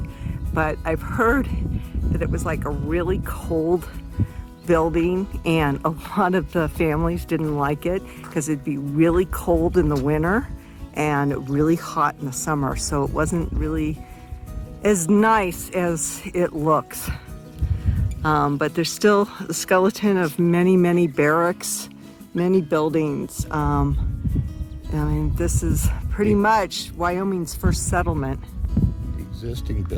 But I've heard that it was like a really cold building, and a lot of the families didn't like it because it'd be really cold in the winter and really hot in the summer. So it wasn't really as nice as it looks. But there's still a skeleton of many, many barracks, many buildings. I mean, this is pretty much Wyoming's first settlement. The existing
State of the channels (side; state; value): both; identical; correlation 1.00